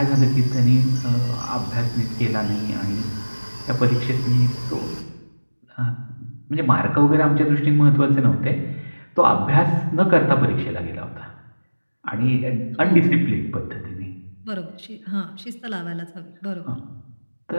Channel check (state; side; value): inverted; both; correlation -1.00